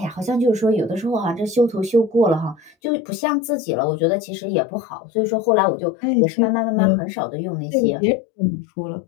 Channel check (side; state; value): right; drops out; at 2.8 s